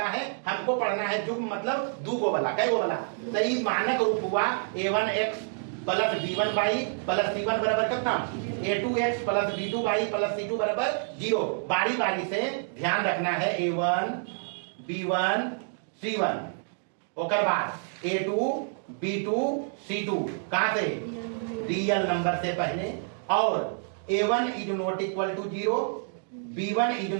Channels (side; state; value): left; silent; digital silence